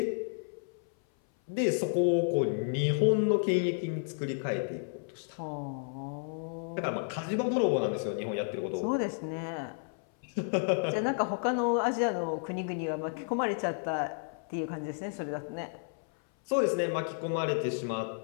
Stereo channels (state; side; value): silent; right; 57 dB below the other